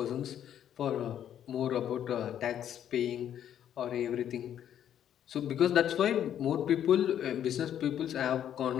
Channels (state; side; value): quieter; right; 10.1 dB